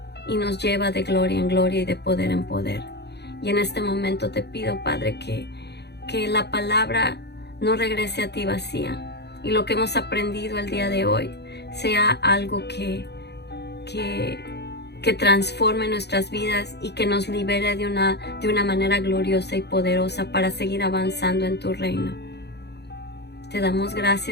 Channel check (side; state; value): right; late; 0.49 ms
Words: y nos lleva de gloria en gloria y de poder en poder. Y en este momento te pido, Padre, que la palabra no regrese a ti vacía y lo que hemos aprendido el día de hoy sea algo que transforme nuestras vidas y que nos libere de una manera gloriosa y poderosa para seguir avanzando en tu reino. Te damos